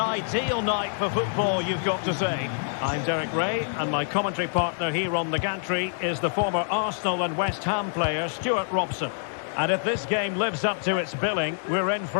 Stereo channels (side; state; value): right; silent; digital silence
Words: night for football, you've got to say. I'm Derek Ray, and my commentary partner here on the gantry is the former Arsenal and West Ham player Stuart Robson. And if this game lives up to its billing, we're in